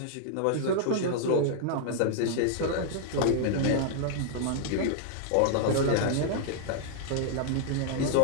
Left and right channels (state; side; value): different; both; correlation -0.01